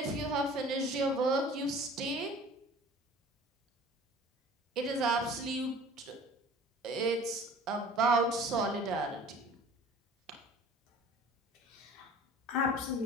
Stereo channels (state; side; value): normal; both; correlation 0.46